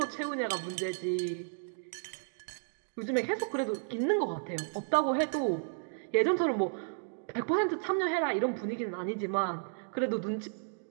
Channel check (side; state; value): left; silent; digital silence